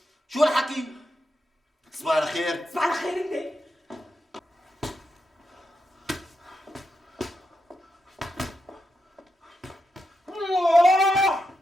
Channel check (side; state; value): both; normal; correlation 0.85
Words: شو هالحكي؟ تصبح على خير. تصبح على خير أنت.